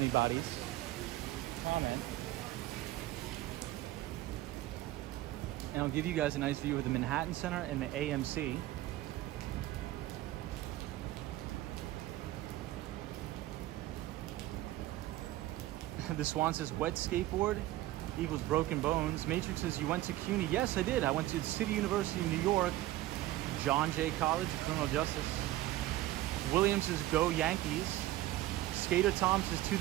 comment. And I'll give you guys a nice view of the Manhattan Center and the AMC. The Swan says, wet skateboard equals broken bones. Matrix says, you went to CUNY. Yes, I did. I went to the City University of New York, John Jay College of Criminal Justice. Williams says, go Yankees. Skater Tom says, to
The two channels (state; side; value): quieter; left; 15.8 dB